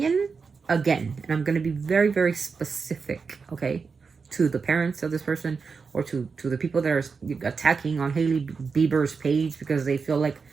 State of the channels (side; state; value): left; quieter; 5.1 dB